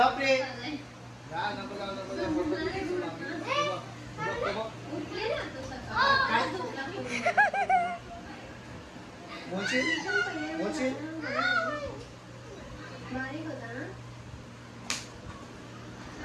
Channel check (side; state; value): both; identical; correlation 1.00